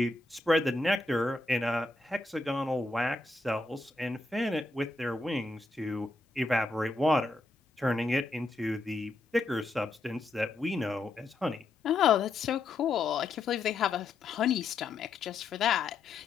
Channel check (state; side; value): quieter; right; 3.3 dB